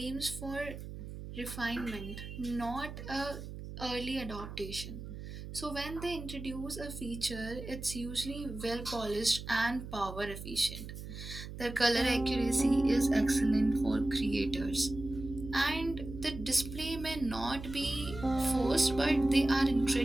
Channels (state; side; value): noise; right; hum, 10 dB below the sound